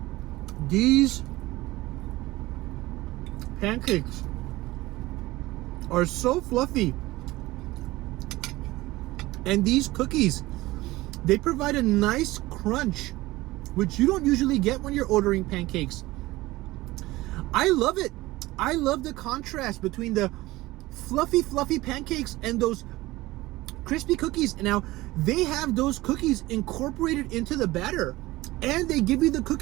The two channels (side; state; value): left; quieter; 18.8 dB